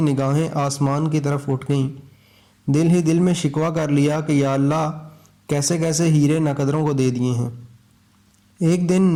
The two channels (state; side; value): identical; both; correlation 1.00